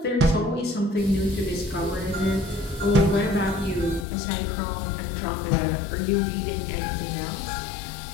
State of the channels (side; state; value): right; drops out; at 4.0 s